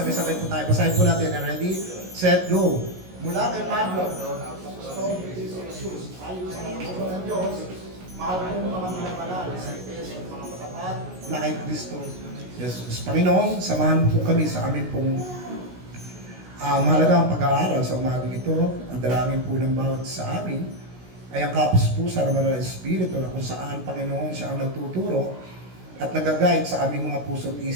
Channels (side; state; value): left; late; 16 ms